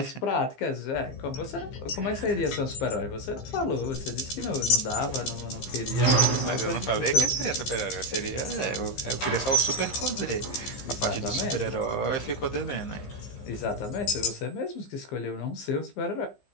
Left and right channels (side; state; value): right; late; 15 ms